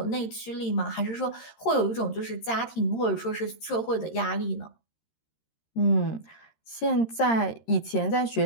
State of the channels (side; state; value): right; late; 13 ms